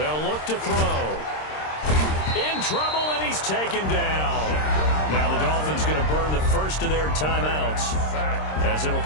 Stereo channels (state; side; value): late; right; 26 ms